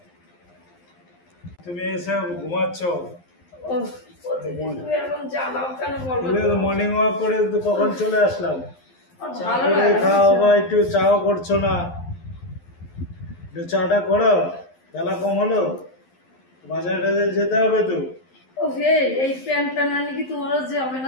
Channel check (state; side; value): late; right; 11 ms